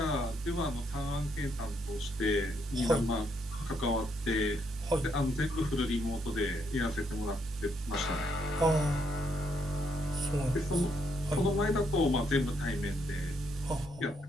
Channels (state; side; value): normal; both; correlation 0.75